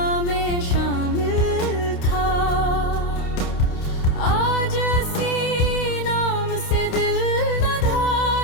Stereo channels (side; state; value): right; late; 28 ms